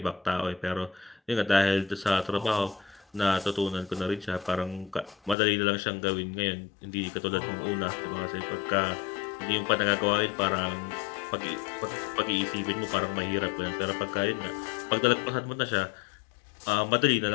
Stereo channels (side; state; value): right; drops out; at 5.4 s